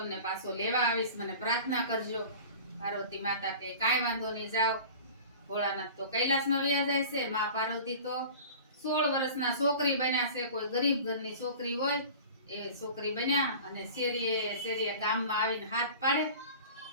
પાછો લેવા આવીશ, મને પ્રાર્થના કરજો। પાર્વતી માતા કે કાંઈ વાંધો નહીં, જાઓ। ભોળાનાથ તો કૈલાસમાં વયા જાય છે, માં પાર્વતી તો 16 વર્ષના છોકરી બન્યા છે, કોઈ ગરીબ ઘરની છોકરી હોય એ છોકરી બન્યા અને શેરીએ ગામમાં આવીને હાથ પાડે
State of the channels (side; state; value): both; inverted; correlation -0.39